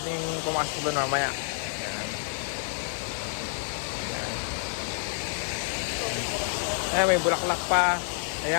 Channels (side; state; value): right; silent; 59 dB below the other